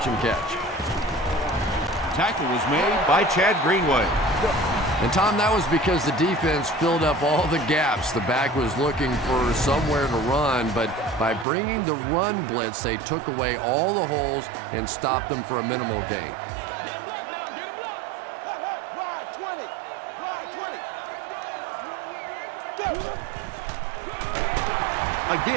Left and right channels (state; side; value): drops out; left; at 11.5 s